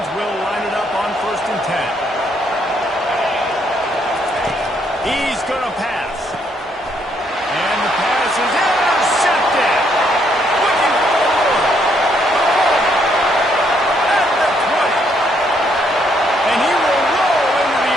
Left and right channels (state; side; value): normal; both; correlation 0.71